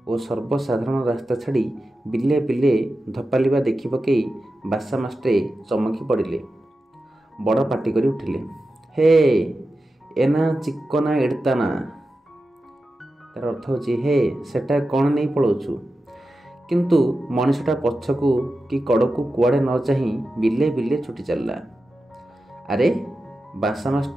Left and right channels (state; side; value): normal; both; correlation 0.92